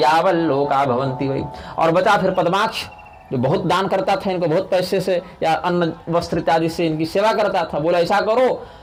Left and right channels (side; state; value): both; identical; correlation 1.00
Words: भवंती वही। और बचा फिर पद्माक्ष जो बहुत दान करता था, इनको बहुत पैसे से या अन्न वस्त्र इत्यादि से इनकी सेवा करता था। बोला ऐसा करो,